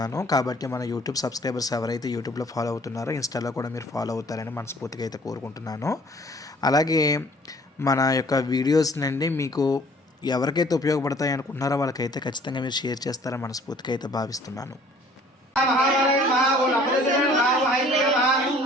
కాబట్టి మన యూట్యూబ్ సబ్స్క్రైబర్స్ ఎవరైతే యూట్యూబ్లో ఫాలో అవుతున్నారో ఇన్స్టాలో కూడా మీరు ఫాలో అవుతారని మనస్ఫూర్తిగా అయితే కోరుకుంటున్నాను. అలాగే మన యొక్క వీడియోస్నండి మీకు ఎవరికైతే ఉపయోగపడతాయి అనుకుంటున్నారో వాళ్ళకైతే ఖచ్చితంగా మీరు షేర్ చేస్తారని మనస్ఫూర్తిగా అయితే భావిస్తున్నాను.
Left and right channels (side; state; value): both; normal; correlation 0.54